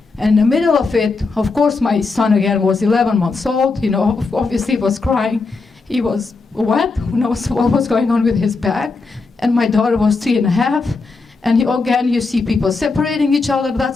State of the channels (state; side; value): quieter; right; 4.1 dB